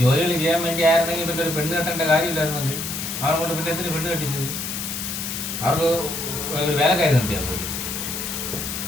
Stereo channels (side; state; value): left; noise; hiss, 5 dB below the sound